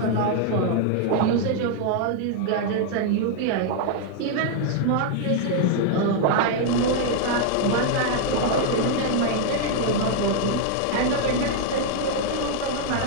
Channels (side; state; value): both; different; correlation 0.00